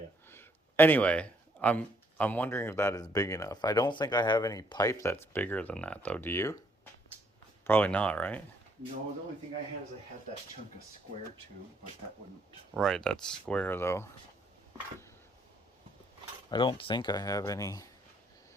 Anyway, I'm wondering if that is big enough. I don't think I have any pipe that's bigger than that, though. Do you? Probably not, right? No, the only thing I had is I had that chunk of square tube, but that wouldn't. Right, that's square, though. I don't think I have any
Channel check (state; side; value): normal; both; correlation 0.69